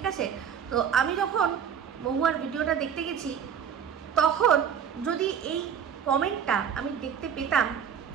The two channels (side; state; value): left; quieter; 7.9 dB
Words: আছে? তো আমি যখন মহুয়ার ভিডিওটা দেখতে গেছি, তখন যদি এই কমেন্টটা আমি দেখতে পেতাম